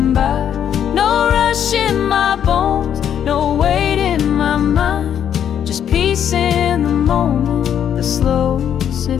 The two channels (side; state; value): right; quieter; 9.3 dB